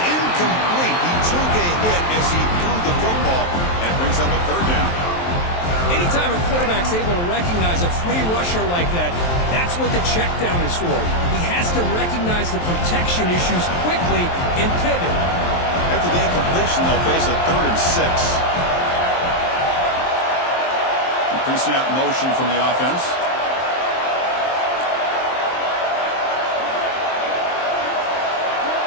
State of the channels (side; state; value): right; late; 23 ms